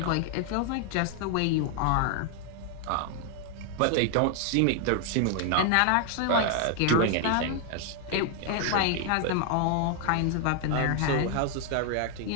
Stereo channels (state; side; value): different; both; correlation 0.00